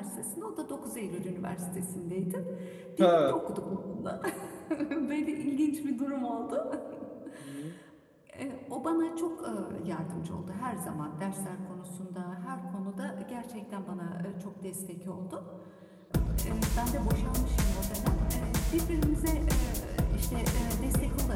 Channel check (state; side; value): identical; both; correlation 1.00